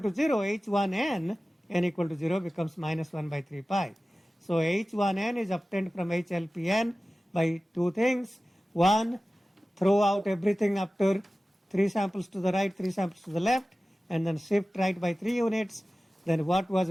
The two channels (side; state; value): both; normal; correlation 0.96